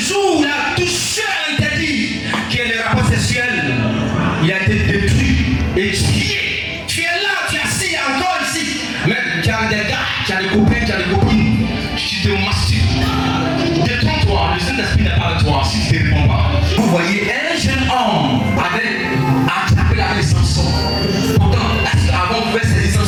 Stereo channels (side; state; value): both; identical; correlation 1.00